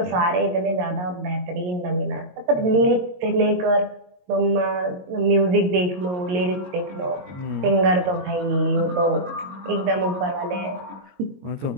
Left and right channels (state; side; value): late; left; 22 ms